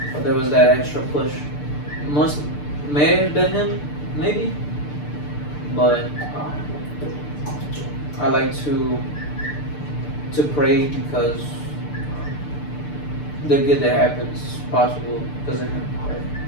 But there was that extra push. May have been him, maybe. But I like to pray because the good that happens is possible because of him. Right?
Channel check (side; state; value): right; late; 6.7 ms